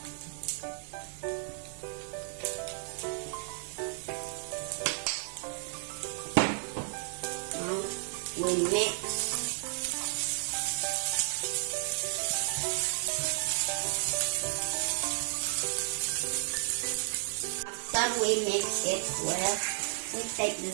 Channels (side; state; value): left; silent; digital silence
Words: Now we mix. After we mix it well, we take the